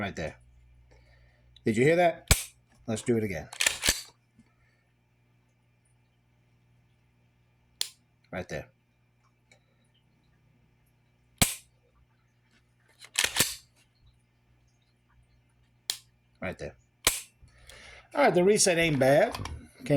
there. Did you hear that? Let's do it again. Right there. Right there. All right, the reset ain't bad.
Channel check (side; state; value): both; identical; correlation 1.00